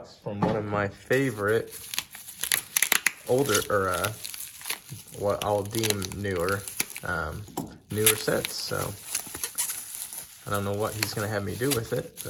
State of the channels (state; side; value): identical; both; correlation 1.00